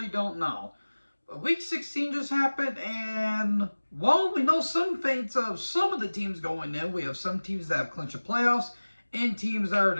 don't know. But Week 16 just happened, and while we know some fates of some of the teams going in, we have some teams that have clinched the playoffs, and teams that are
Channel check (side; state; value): both; inverted; correlation -1.00